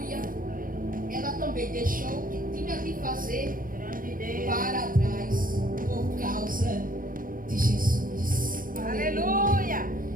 Ela também deixou o que tinha de fazer para trás por causa de Jesus. Aleluia.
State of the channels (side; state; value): left; late; 0.40 ms